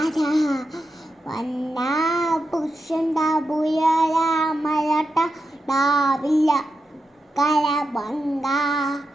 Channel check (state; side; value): normal; both; correlation 0.89